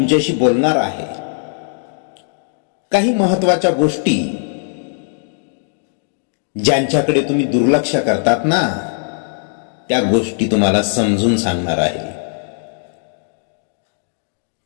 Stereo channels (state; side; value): silent; right; digital silence